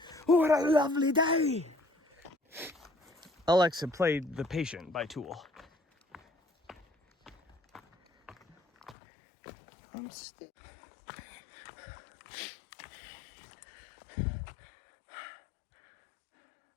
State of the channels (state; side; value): drops out; right; at 9.0 s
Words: What a lovely day. Alexa played The Patient by Tool. I'm still...